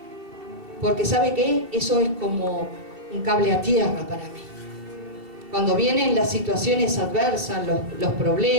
Porque ¿sabe qué? Eso es como un cable a tierra para mí. Cuando vienen las situaciones adversas, los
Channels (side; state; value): left; late; 2.7 ms